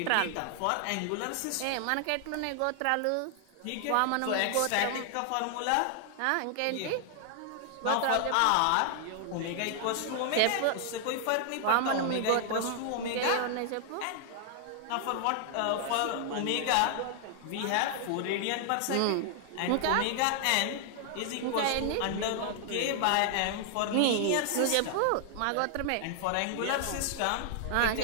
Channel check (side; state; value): both; different; correlation 0.00